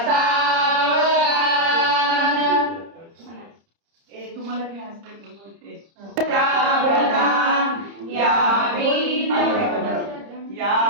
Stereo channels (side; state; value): left; late; 30 ms